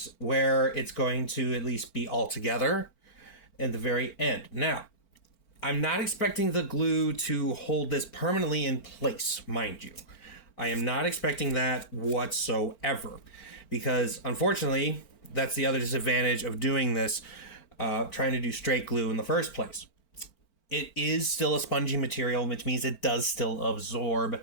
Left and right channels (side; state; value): right; late; 4.4 ms